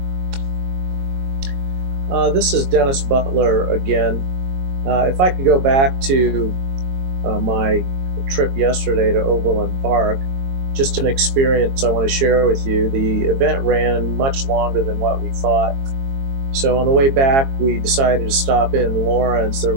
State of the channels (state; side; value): late; left; 22 ms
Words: This is Dennis Butler again. If I could go back to my trip yesterday to Overland Park, just an experience I want to share with you. The event ran much longer than what we thought. So on the way back, we decided to stop in Lawrence. There